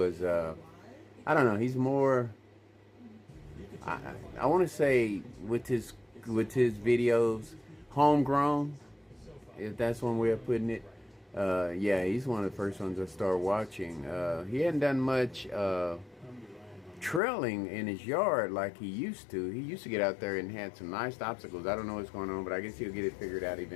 I don't know, he's more, I want to say with his videos, homegrown, if that's one way of putting it. Yeah, he's one of the first ones I started watching. He hadn't done much trailing in his yard like he used to. He used to get out there and had some nice obstacles. I don't know what's going on, but I guess he'll get it figured out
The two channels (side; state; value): right; drops out; at 17.2 s